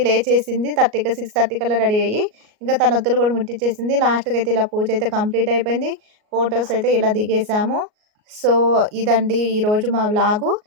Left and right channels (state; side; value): late; left; 38 ms